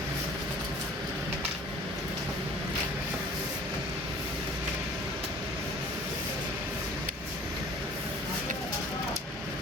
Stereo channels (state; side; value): normal; both; correlation 0.50